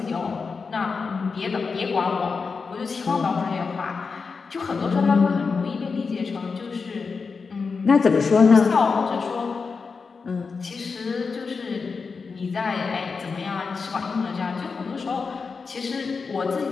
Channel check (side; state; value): right; quieter; 4.9 dB